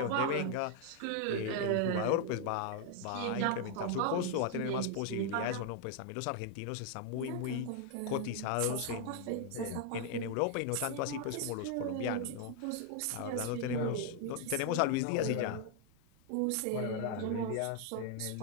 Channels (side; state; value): both; different; correlation 0.00